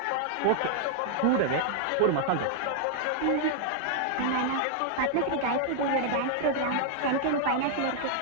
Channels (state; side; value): different; both; correlation -0.01